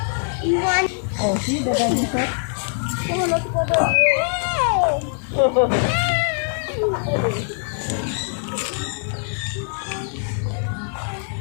Oh, see the daddy shot? Oh, let's go down.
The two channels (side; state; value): right; silent; 64 dB below the other